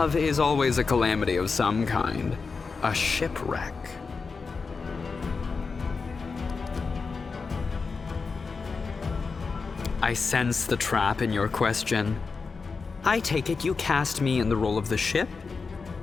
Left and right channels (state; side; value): quieter; right; 4.7 dB